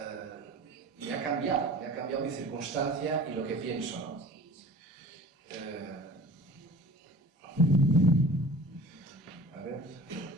me ha cambiado mi circunstancia y lo que pienso, ¿no? A ver,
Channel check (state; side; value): normal; both; correlation 0.42